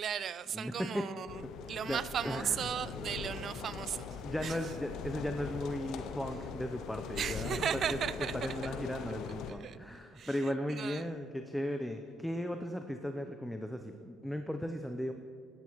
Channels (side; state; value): both; normal; correlation 0.78